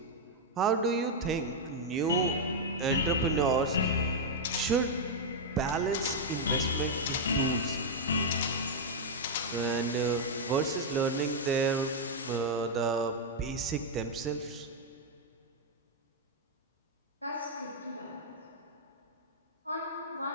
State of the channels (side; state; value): both; normal; correlation -0.03